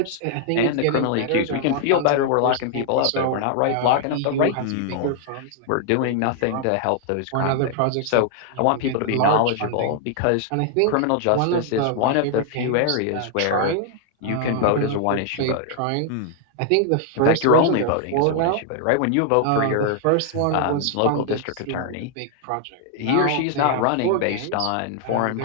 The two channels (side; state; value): both; different; correlation 0.00